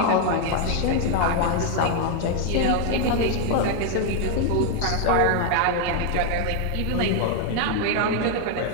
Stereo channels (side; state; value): both; different; correlation 0.00